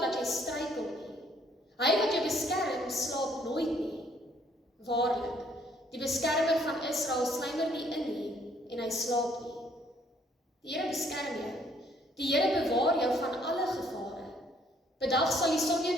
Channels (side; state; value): both; normal; correlation 0.65